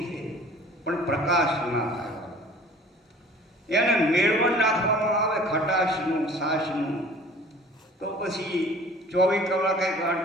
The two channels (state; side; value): normal; both; correlation 0.48